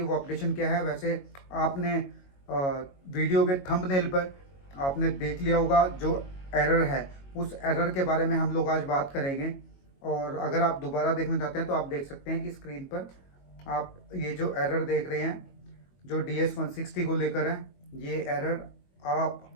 अपडेशन क्या है? वैसे आपने वीडियो के थंबनेल पर आपने देख लिया होगा जो एरर है, उस एरर के बारे में हम लोग आज बात करेंगे। और अगर आप दोबारा देखना चाहते हैं तो आप देख सकते हैं कि स्क्रीन पर आप ये जो एरर देख रहे हैं जो DS-160 को लेकर है, ये एरर आप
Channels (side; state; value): right; late; 22 ms